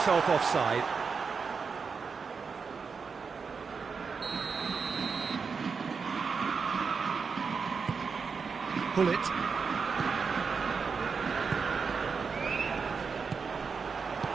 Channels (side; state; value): left; quieter; 5.4 dB